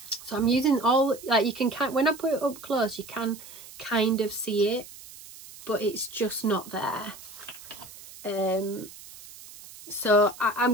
So I'm using all, like you can, when I put it up close, you can kind of see it, but it's just not there. So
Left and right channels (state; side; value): noise; right; hiss, 17 dB below the sound